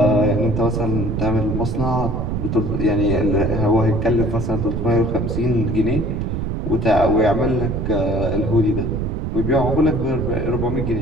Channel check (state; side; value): noise; right; rumble, 2 dB below the sound